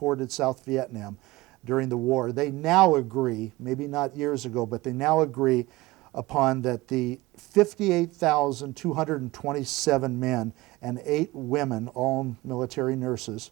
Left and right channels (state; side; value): quieter; left; 20.3 dB